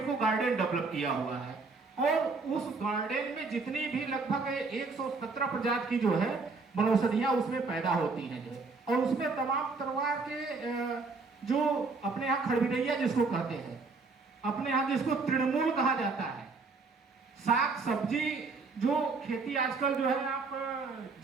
गार्डन डेवलप किया हुआ है। और उस गार्डन में जितनी भी लगभग 117 प्रजाति की जो है वनौषधियां उसमें पैदा होती हैं जो, और उसमें तमाम तरह के जो अपने यहाँ खड़बिड़ैया जिसको कहते हैं, अपने यहाँ जिसको तृणमूल कहा जाता है, साग सब्जी जो खेती आजकल जो है आप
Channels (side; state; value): left; quieter; 4.1 dB